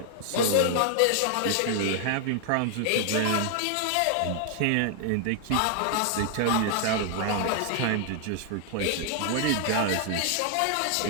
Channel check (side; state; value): both; different; correlation 0.00